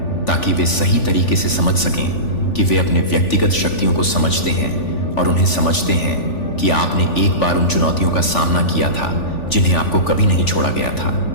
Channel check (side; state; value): right; late; 3.4 ms